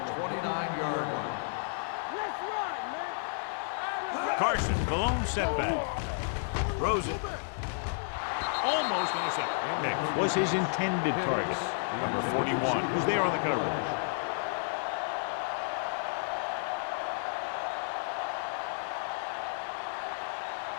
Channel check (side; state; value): right; silent; 57 dB below the other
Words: 29-yard line. Carson, the lone setback. Throws it. Almost intercepted. Next was his intended target. Number 41, who's there on the coverage.